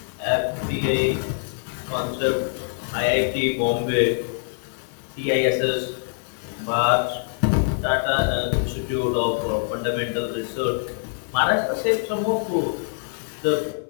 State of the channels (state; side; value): silent; right; 62 dB below the other